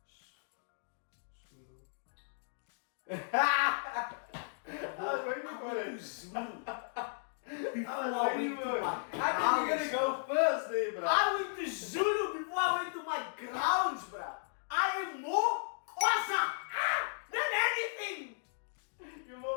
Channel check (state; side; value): silent; right; digital silence